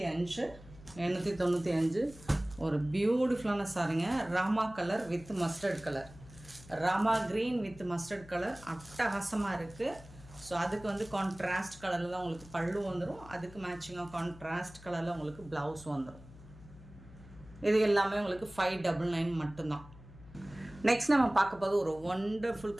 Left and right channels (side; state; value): left; noise; hum, 19 dB below the sound